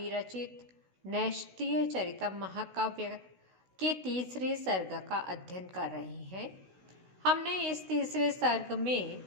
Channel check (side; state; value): left; late; 16 ms